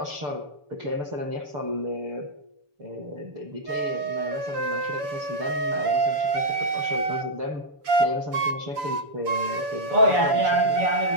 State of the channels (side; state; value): left; late; 6.9 ms